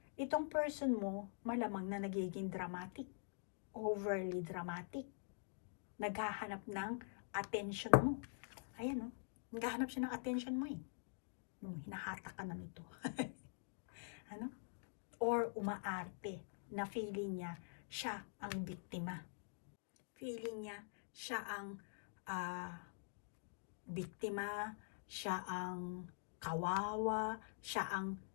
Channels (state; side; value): silent; right; digital silence